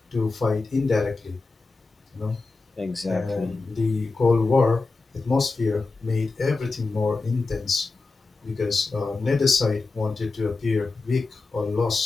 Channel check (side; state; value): right; quieter; 3.8 dB